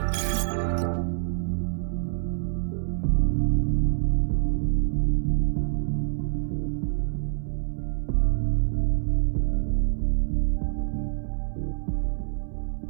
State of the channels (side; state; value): left; silent; 61 dB below the other